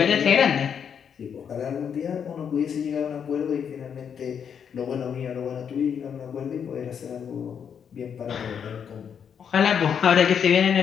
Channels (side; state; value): right; quieter; 7.6 dB